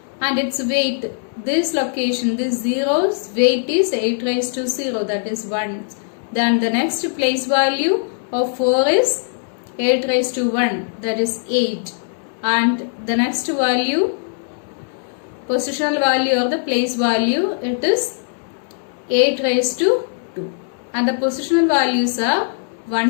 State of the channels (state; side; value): silent; right; digital silence